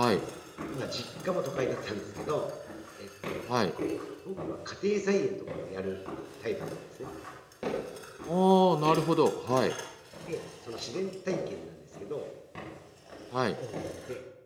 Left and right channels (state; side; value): identical; both; correlation 1.00